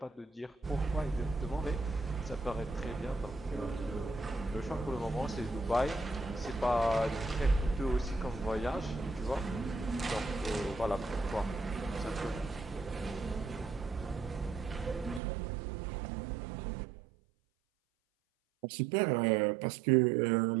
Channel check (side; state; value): left; drops out; at 15.2 s